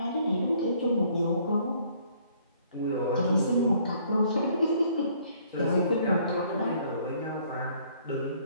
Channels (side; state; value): both; inverted; correlation -0.62